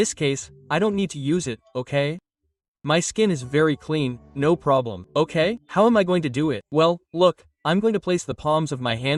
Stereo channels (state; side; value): identical; both; correlation 1.00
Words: case, I don't need to use it, okay? My skin is very clean, no problem, okay? How am I going to do it? Well, look, I'm going to place the palms of my